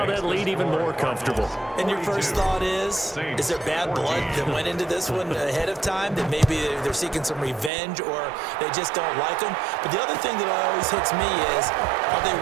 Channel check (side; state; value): left; drops out; at 7.7 s